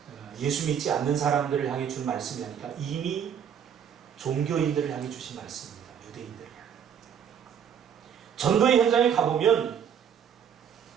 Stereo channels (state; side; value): quieter; left; 8.1 dB